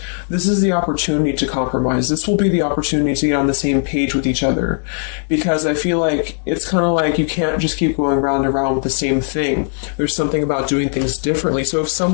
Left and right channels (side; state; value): right; silent; 67 dB below the other